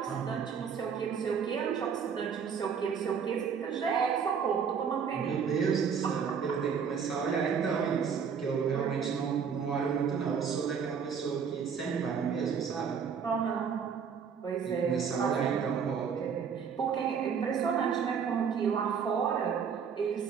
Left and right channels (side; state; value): left; quieter; 6.8 dB